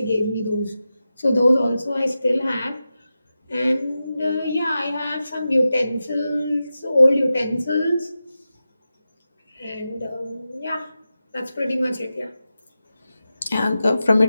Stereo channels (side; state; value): both; inverted; correlation -0.92